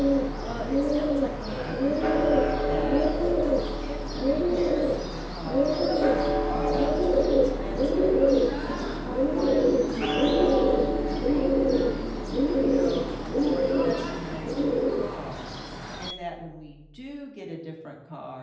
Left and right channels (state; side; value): identical; both; correlation 1.00